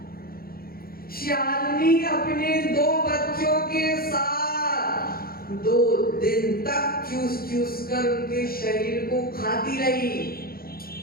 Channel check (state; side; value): late; right; 0.43 ms